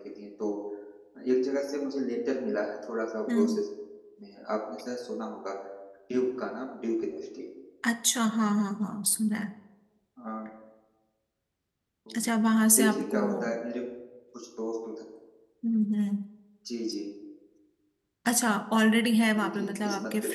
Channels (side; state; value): both; identical; correlation 1.00